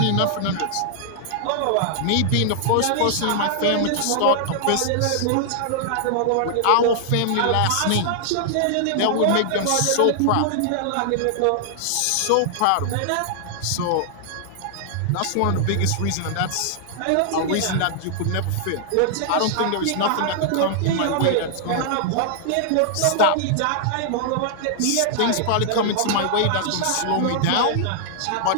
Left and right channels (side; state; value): both; different; correlation -0.01